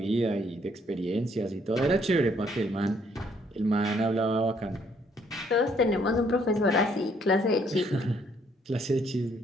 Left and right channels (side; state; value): both; normal; correlation 0.67